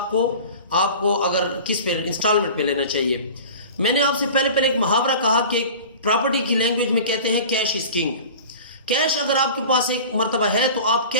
کو اگر کس پہ انسٹالمنٹ پہ لینا چاہیے. میں نے آپ سے پہلے ایک محاورہ کہا کہ پراپرٹی کی لینگویج میں کہتے ہیں کیش از کنگ. کیش اگر آپ کے پاس ایک مرتبہ ہے تو آپ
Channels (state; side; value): inverted; both; correlation -0.38